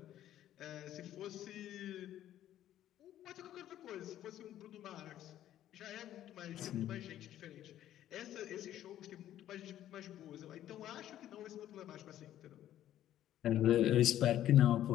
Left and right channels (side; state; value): right; quieter; 12.2 dB